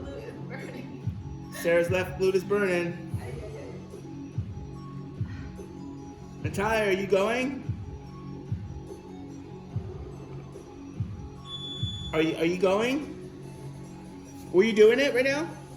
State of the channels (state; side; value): identical; both; correlation 1.00